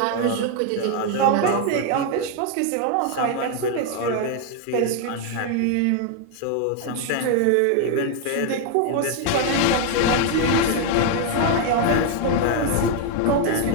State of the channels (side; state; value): both; different; correlation 0.01